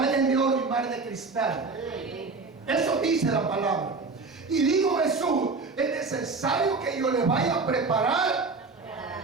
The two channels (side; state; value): left; quieter; 4.1 dB